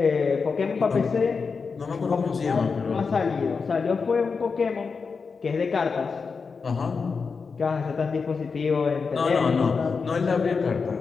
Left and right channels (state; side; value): quieter; right; 5.1 dB